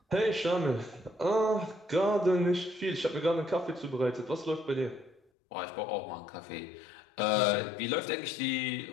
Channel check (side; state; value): right; drops out; at 5.2 s